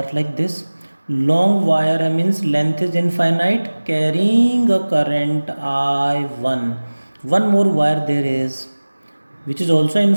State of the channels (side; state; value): both; inverted; correlation -1.00